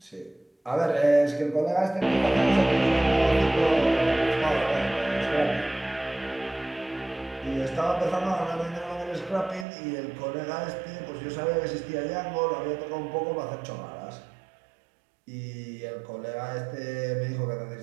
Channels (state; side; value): drops out; left; at 9.7 s